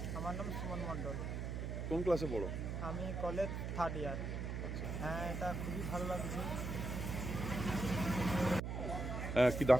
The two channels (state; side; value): noise; right; hum, 3 dB below the sound